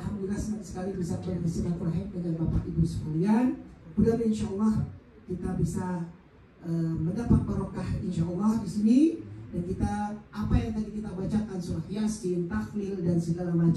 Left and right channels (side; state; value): both; identical; correlation 1.00